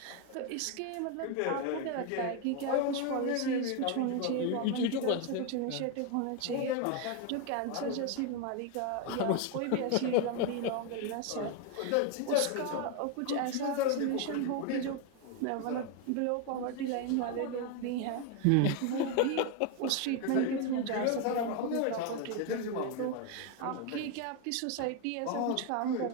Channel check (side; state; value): both; different; correlation 0.01